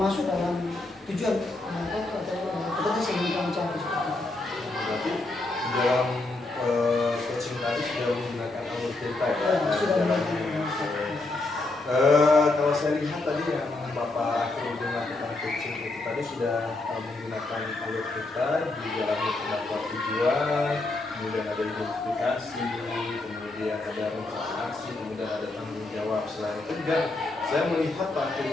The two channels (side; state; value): right; quieter; 3.0 dB